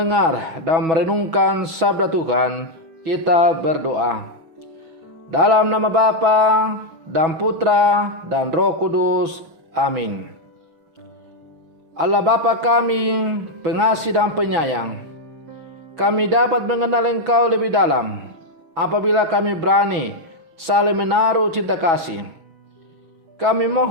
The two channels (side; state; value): left; late; 6.1 ms